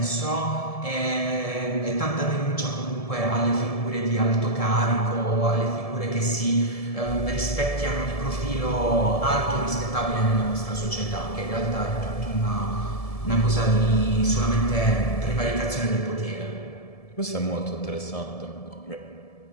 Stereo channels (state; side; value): late; right; 1.7 ms